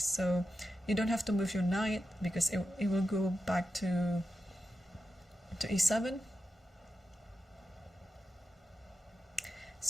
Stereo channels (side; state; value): both; normal; correlation 0.89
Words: you don't have to move your knight, because it will go back to e7.